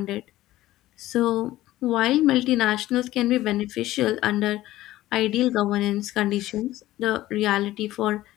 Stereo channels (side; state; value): right; quieter; 15.6 dB